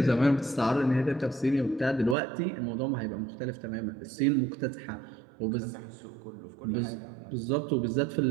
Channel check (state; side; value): drops out; left; at 2.1 s